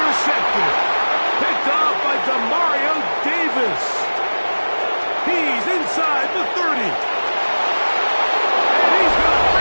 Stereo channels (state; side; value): inverted; both; correlation -1.00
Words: Picked off by Demario Davis. He's inside the 30. And he's going to